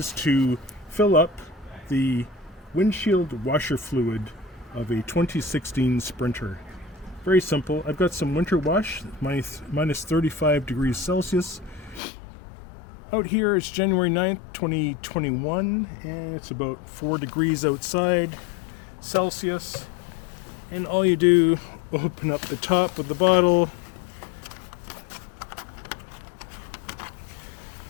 to fill up the windshield washer fluid of a 2016 Sprinter. Very simple. I've got some winter wash, minus 35 degrees Celsius. Out here it's January 9th, 2021, and it's about 4 degrees outside Celsius. And all you do, open up the top of the bottle,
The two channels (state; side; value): drops out; right; at 12.0 s